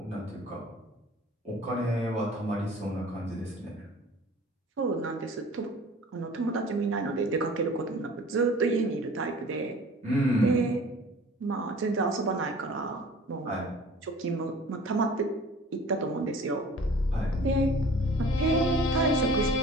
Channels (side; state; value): both; normal; correlation 0.46